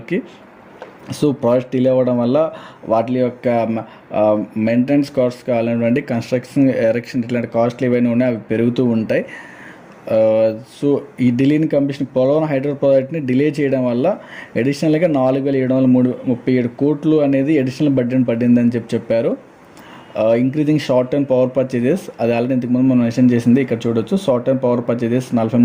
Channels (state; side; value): identical; both; correlation 1.00